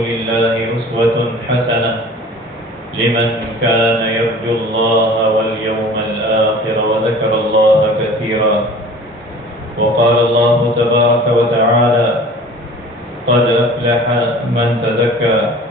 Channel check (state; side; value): normal; both; correlation 0.44